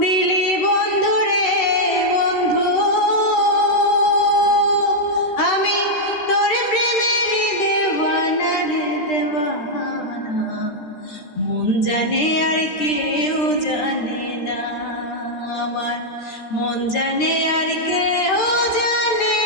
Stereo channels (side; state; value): right; late; 13 ms